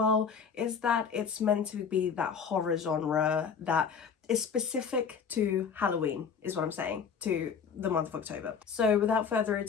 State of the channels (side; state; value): right; quieter; 6.4 dB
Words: is that it's meant to be that horror genre that is specific to Halloween, is what I'm saying, to the month of October. So without further